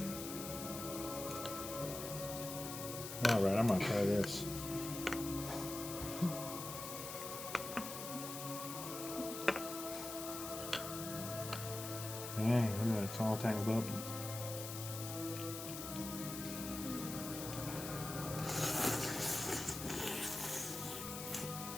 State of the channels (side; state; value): left; noise; hiss, 7 dB below the sound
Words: All right, I'm gonna try this. Dang, look at that. It's all tangled up.